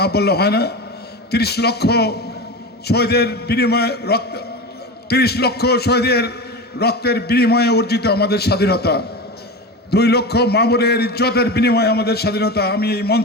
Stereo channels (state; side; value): normal; both; correlation 0.25